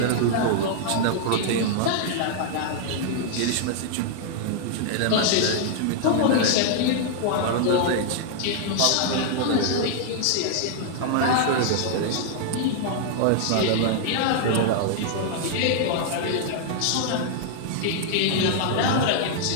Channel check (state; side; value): different; both; correlation -0.01